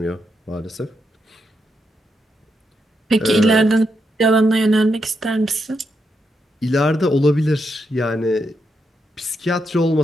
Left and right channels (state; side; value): normal; both; correlation 0.82